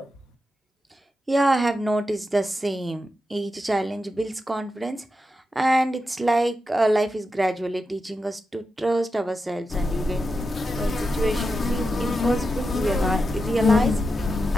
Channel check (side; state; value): both; normal; correlation 0.89